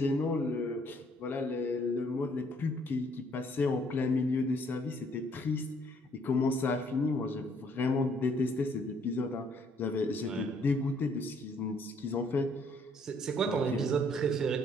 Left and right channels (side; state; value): both; normal; correlation 0.65